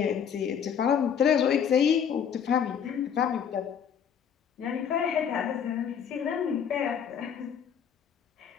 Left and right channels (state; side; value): quieter; right; 7.9 dB